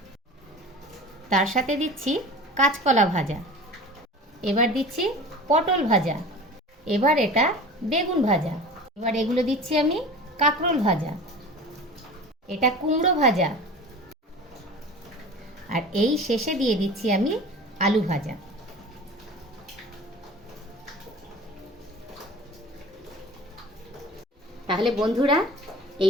তার সাথে দিচ্ছি কাঁচকলা ভাজা, এবার দিচ্ছি পটল ভাজা, এবার এটা বেগুন ভাজা, এবার এগুলো দিচ্ছি আমি কাঁকরোল ভাজা, এটা কুমড়ো ভাজা, আর এই শেষে দিয়ে দিচ্ছি আমি আলু ভাজা। তাহলে বন্ধুরা,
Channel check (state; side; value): normal; both; correlation 0.38